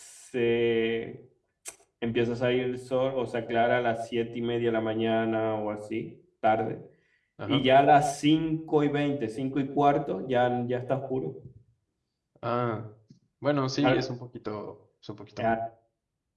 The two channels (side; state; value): both; identical; correlation 1.00